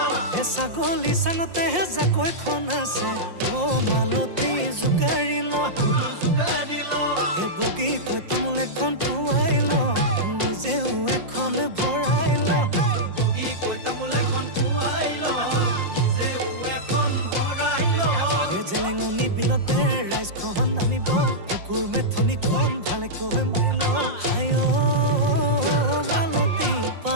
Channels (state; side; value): late; left; 5.6 ms